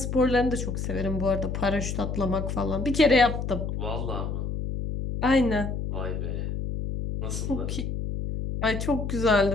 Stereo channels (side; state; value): left; noise; hum, 3 dB below the sound